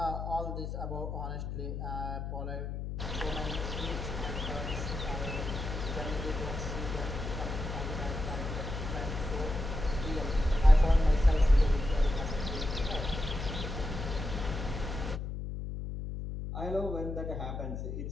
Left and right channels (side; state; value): left; noise; hum, 5 dB below the sound